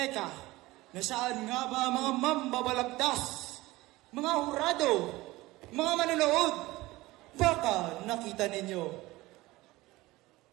nasaan nga ba mga mambabalagtas? Mga hurado, mga manonood, baka nakita ninyo.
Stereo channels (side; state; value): left; quieter; 19.4 dB